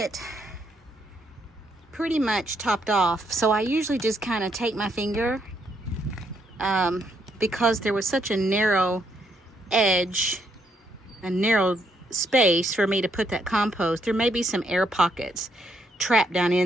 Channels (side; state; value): both; normal; correlation 0.75